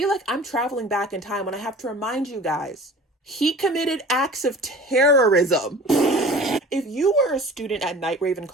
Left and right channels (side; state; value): both; normal; correlation 0.42